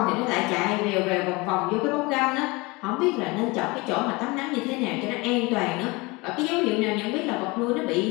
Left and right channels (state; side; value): quieter; right; 24.9 dB